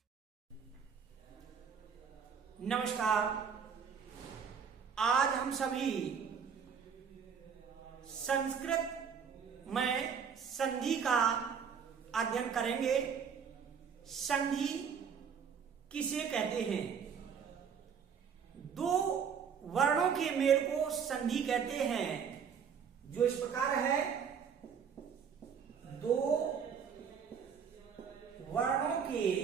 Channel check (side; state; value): left; quieter; 6.9 dB